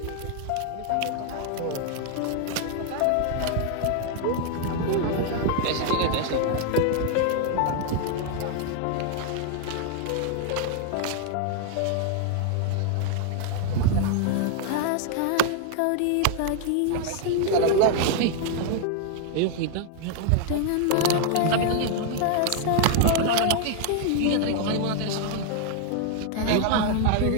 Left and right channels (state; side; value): different; both; correlation 0.00